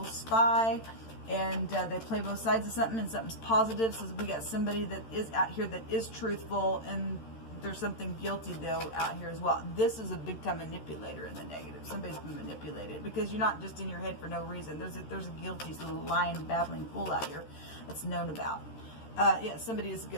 spy, and they play both sides of something, and something's positive. So we got somebody that is out here that is truthful, and there's something guilty though out here as well. This is a big time manipulator in the negative. Somebody's been manipulated because you're not just in your head for no reason. There's a guilty little lying, babbling fool out here that's known about. Yeah, somebody is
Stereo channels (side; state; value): right; late; 13 ms